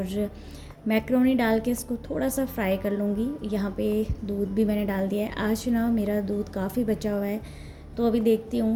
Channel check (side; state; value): both; identical; correlation 1.00